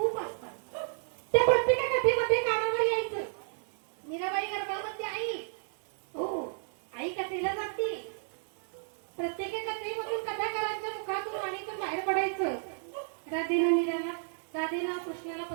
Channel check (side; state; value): left; silent; digital silence